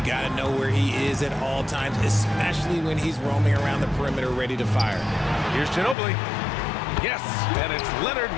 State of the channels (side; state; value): right; drops out; at 6.0 s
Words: got to know where he is at all times, especially when he's roaming around the perimeter ready to fire. Here's Ginobili. Yes, and it's Leonard